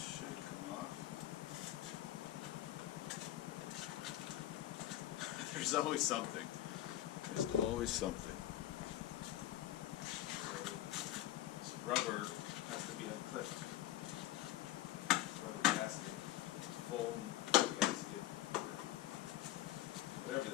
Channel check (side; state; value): right; quieter; 13.7 dB